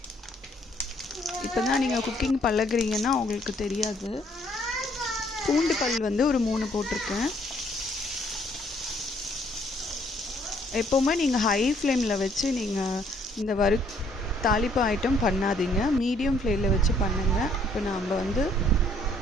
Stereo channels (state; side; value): normal; both; correlation 0.65